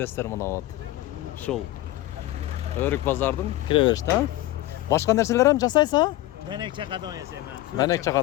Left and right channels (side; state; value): right; quieter; 16.3 dB